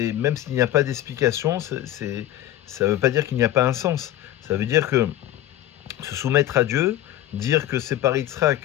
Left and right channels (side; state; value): right; quieter; 13.4 dB